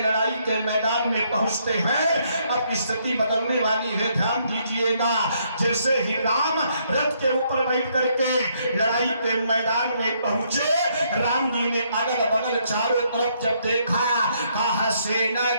लड़ाई के मैदान में पहुंचते हैं, अब स्थिति बदलने वाली है। ध्यान दीजिएगा, जैसे ही राम रथ के ऊपर बैठ करके लड़ाई के मैदान में पहुंचे, राम जी ने अगल बगल चारों तरफ जब देखा, कहा सेना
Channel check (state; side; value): inverted; both; correlation -0.71